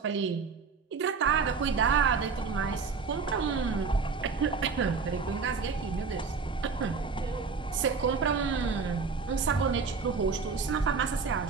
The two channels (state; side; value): quieter; left; 5.1 dB